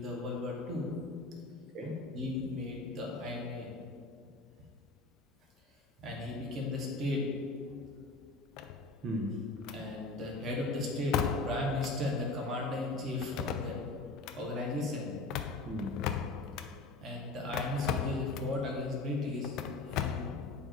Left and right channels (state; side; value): quieter; right; 3.2 dB